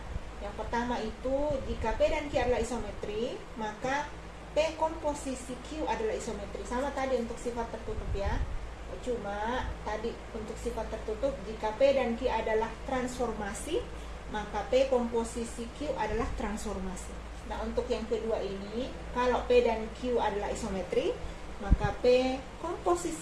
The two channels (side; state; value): both; identical; correlation 1.00